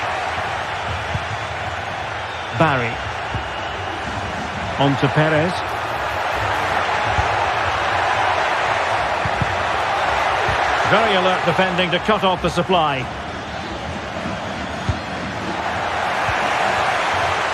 Barry. On to Perez. Very alert defending to cut off the supply.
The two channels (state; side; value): identical; both; correlation 1.00